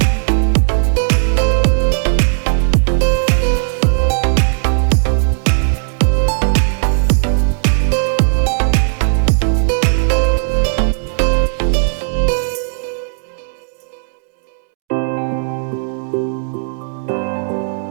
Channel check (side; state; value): left; silent; digital silence